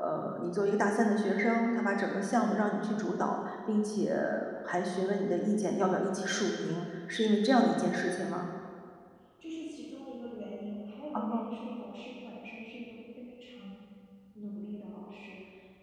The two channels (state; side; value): identical; both; correlation 1.00